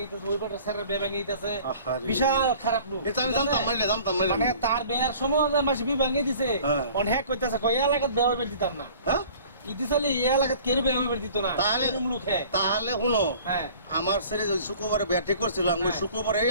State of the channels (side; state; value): both; inverted; correlation -0.48